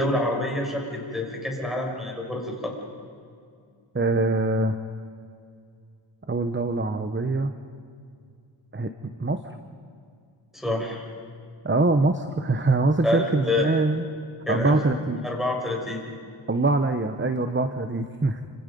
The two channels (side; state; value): both; normal; correlation 0.49